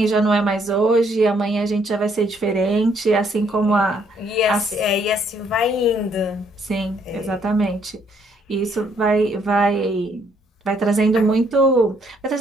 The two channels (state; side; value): normal; both; correlation 0.68